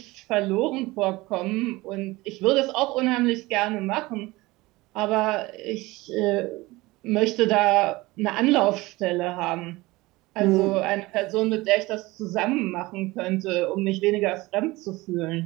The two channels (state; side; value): quieter; left; 20.9 dB